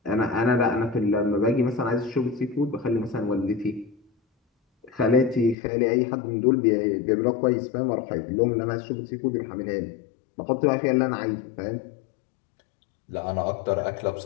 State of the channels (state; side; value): drops out; right; at 5.6 s